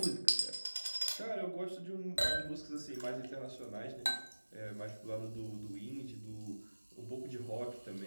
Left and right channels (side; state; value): both; inverted; correlation -1.00